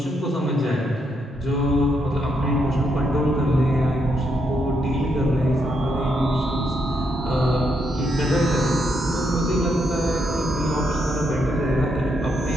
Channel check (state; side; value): normal; both; correlation 0.78